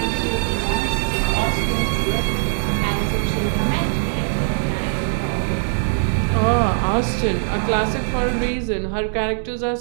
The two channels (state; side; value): silent; left; digital silence